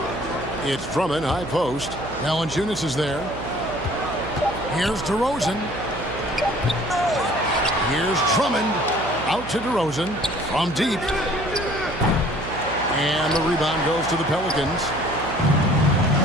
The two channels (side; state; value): right; noise; hum, 11 dB below the sound